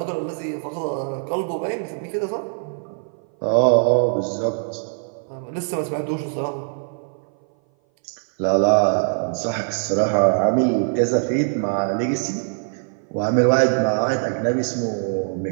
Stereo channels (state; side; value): silent; left; 58 dB below the other